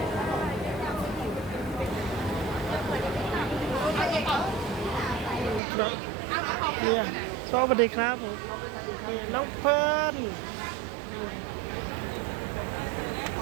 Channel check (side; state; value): left; drops out; at 5.6 s